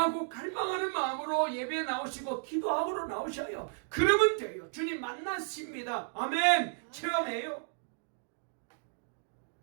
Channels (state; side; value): silent; left; digital silence